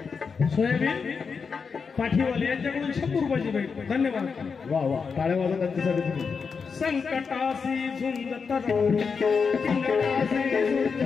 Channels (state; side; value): quieter; right; 5.5 dB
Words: सोयाबीन पाठीवाले यांच्याकडून 100 रुपयाची भेट धन्यवाद वा वा टाळ्या वाजवा त्यांच्यासाठी तुम्ही संकटासी झुंजत राही संकटासी